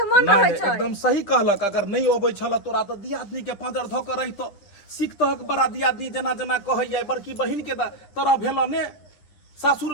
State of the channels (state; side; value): late; right; 10 ms